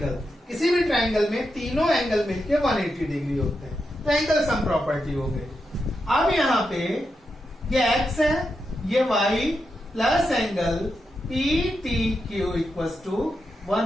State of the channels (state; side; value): normal; both; correlation 0.86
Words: किसी भी ट्राइंगल में तीनों एंगल मिलके 180 डिग्री होते हैं, तो एंगल सम प्रॉपर्टी हो गई। अब यहां पे ये x है, ये y plus angle PTQ equals to